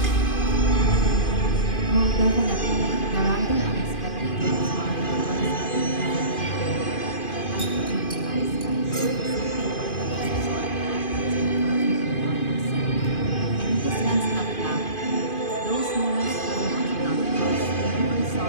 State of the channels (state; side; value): late; right; 2.5 ms